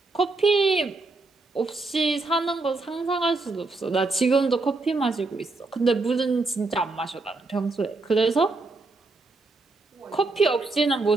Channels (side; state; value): left; quieter; 3.4 dB